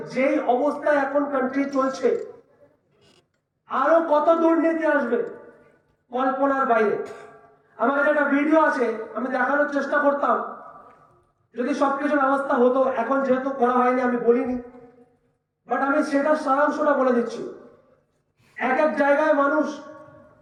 যেই অবস্থায় এখন কান্ট্রি চলছে, আরো কত দুর্নীতি আসবে কল্পনার বাইরে। আমার কাছে একটা ভিডিও আছে, আমি দেখানোর চেষ্টা করতাম যদি সবকিছু ব্যবস্থা হতো। এখন যেহেতু করা হয়নি আমি বলিনি, বাট আমি সেটার সারাংশটা বলে দিচ্ছি। এক এক জায়গায় মানুষ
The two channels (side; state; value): both; identical; correlation 1.00